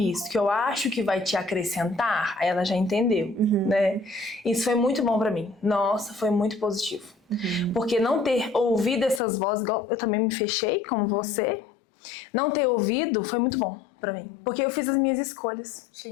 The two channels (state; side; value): drops out; right; at 9.2 s